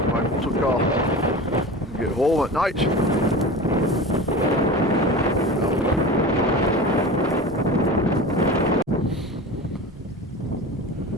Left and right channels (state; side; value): normal; both; correlation 0.32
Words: my motor car and get home at night.